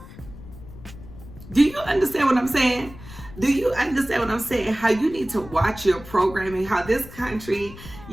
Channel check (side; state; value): left; noise; rumble, 16 dB below the sound